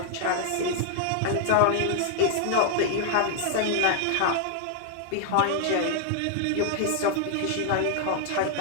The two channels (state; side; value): different; both; correlation 0.00